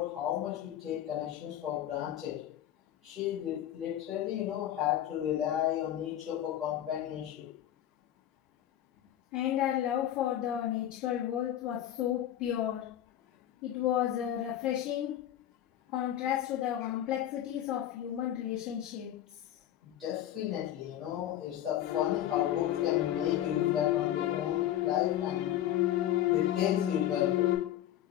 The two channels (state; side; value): quieter; right; 12.0 dB